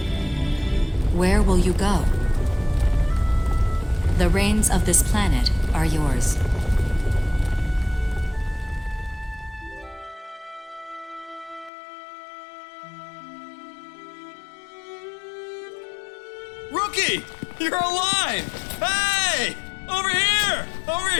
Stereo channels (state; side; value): drops out; right; at 11.7 s